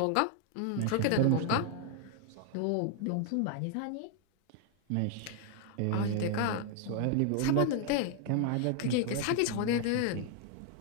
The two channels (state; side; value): different; both; correlation 0.00